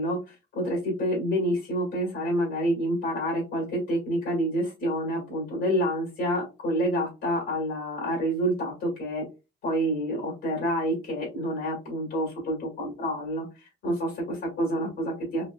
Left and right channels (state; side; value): normal; both; correlation 0.33